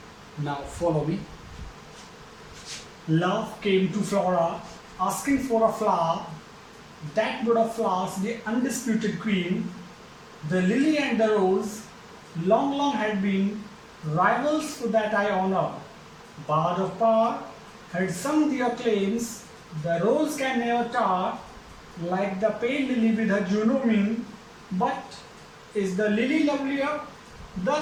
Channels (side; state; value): both; identical; correlation 1.00